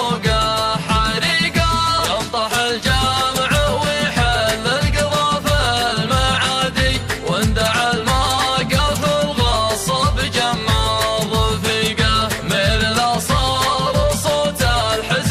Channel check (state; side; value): identical; both; correlation 1.00